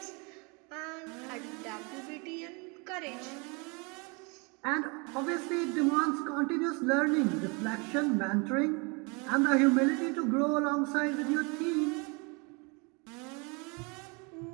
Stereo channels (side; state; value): left; quieter; 31.0 dB